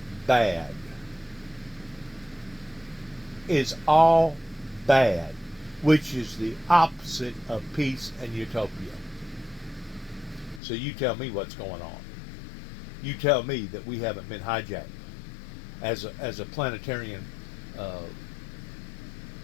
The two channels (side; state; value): right; drops out; at 10.6 s